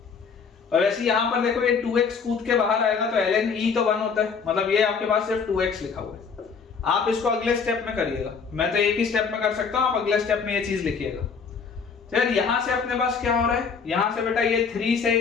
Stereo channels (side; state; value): right; quieter; 5.7 dB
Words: और ऐसे यहां पर देखो ये 2x कूद के बाहर आएगा तो ln e तो 1 होता है, मतलब ये आपके पास सिर्फ 2x लिखा हुआ है। आप इसको अगले स्टेप में करिएगा, मैं तो एक ही स्टेप में कर सकता हूं, आप अगले स्टेप में ये चीज लिखिएगा। तो यार यहां से अपने पास क्या हो रहा है, यहां से बेटा ये 3 से